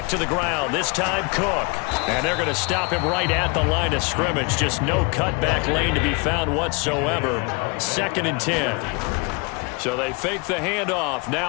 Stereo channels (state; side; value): quieter; right; 30.4 dB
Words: to the ground, this time Cook. And they're going to stop him right at the line of scrimmage. Just no cutback lane to be found whatsoever. 2nd and 10. So they fake the handoff.